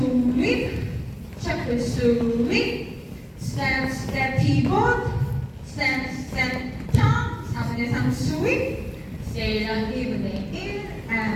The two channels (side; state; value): both; identical; correlation 1.00